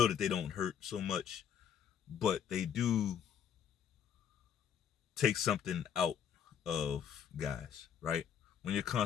that they don't hurt so much, but they do take something out of guys, right? When you're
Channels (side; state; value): right; quieter; 8.4 dB